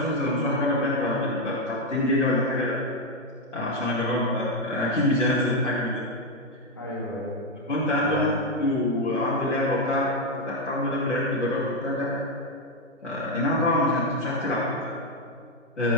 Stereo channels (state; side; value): normal; both; correlation 0.05